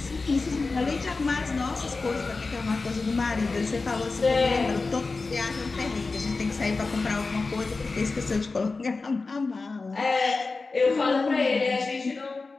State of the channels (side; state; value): right; quieter; 3.9 dB